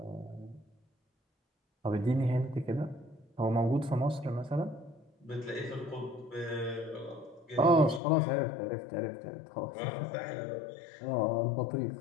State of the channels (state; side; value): drops out; right; at 8.0 s